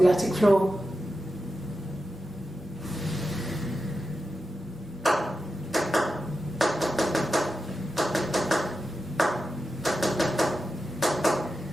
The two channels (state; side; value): normal; both; correlation 0.91